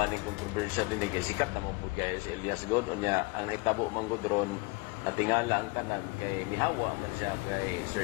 ni controversial dinhi kay sikat na mo pud kay si Elias God unya ang nahitabo manggod ron natingala ang tanan kay nihawa man siya kay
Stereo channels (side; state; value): right; quieter; 26.5 dB